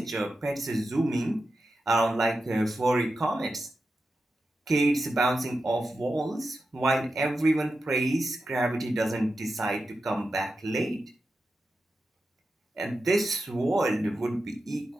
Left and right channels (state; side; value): normal; both; correlation 0.90